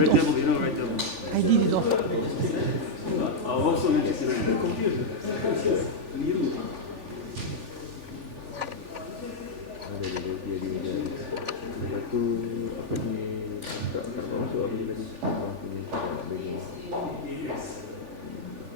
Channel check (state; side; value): late; left; 3.4 ms